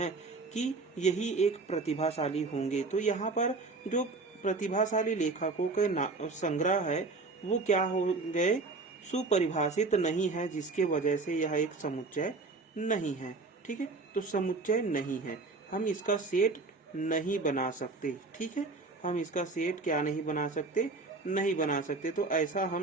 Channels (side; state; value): left; quieter; 3.7 dB